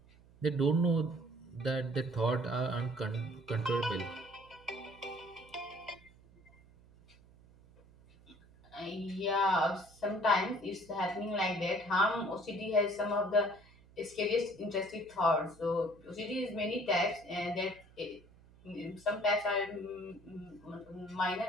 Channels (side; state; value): right; noise; hum, 25 dB below the sound